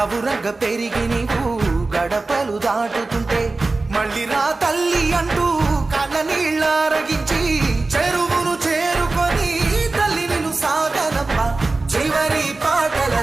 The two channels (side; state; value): left; quieter; 3.4 dB